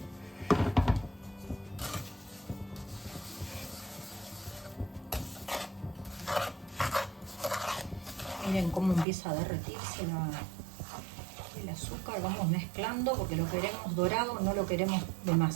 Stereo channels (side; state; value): left; drops out; at 9.1 s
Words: Miren cómo empieza a derretirse el azúcar. Vamos mezclando porque lo queremos dorado, no lo queremos